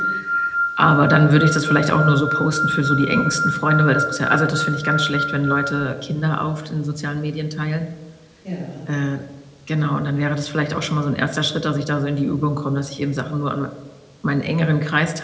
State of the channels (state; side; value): identical; both; correlation 1.00